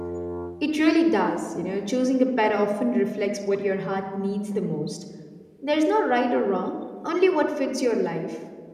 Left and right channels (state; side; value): identical; both; correlation 1.00